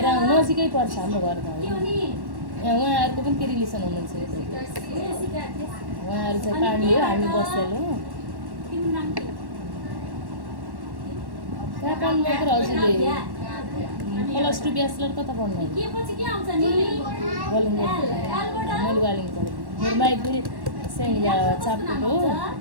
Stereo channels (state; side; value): late; left; 1.1 ms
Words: नजिकै पर्छ हाम्रो घर त यहाँ उहाँहरूको पनि के रिलेसन हुनुहुन्छ उहाँहरू चाहिँ पानी हो हामी बसेर हो कहाँ पढ्नु मात्र हजुरले +2 ब्याचलर कता पढ्नु मैले वालिङ पढेँ मेरो माइती सेन्ट चापको हो